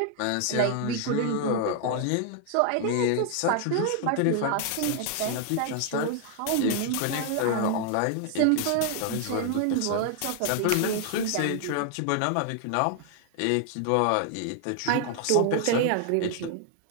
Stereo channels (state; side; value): different; both; correlation 0.00